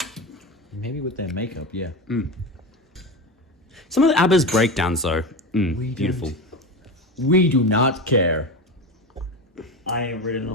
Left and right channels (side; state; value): both; normal; correlation 0.22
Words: Maybe with their makeup, yeah. Some of the ABBA's breakdowns though, beautiful. We do not care. I ain't reading